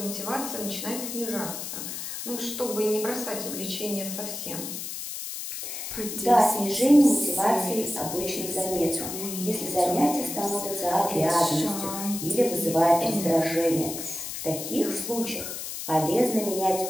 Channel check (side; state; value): left; noise; hiss, 7 dB below the sound